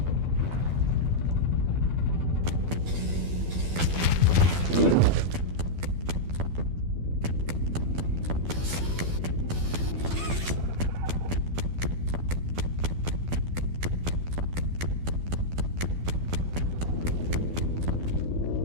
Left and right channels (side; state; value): left; late; 12 ms